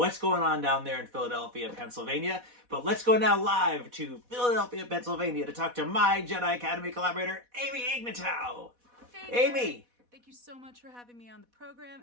going on down there in Philadelphia, Pennsylvania, but let's go now live to Philadelphia, Pennsylvania to talk to my Jedi Academy collaborator, Amy Ignatow. Hey, Amy! Thank you so much for having me on the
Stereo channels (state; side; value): late; left; 4.1 ms